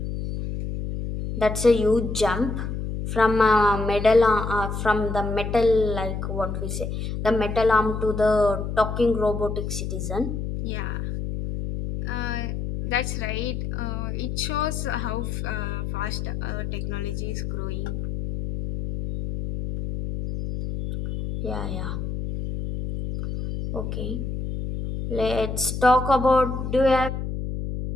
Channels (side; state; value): left; noise; hum, 4 dB below the sound